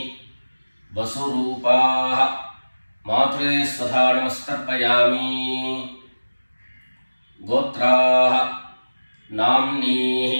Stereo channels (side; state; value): both; inverted; correlation -1.00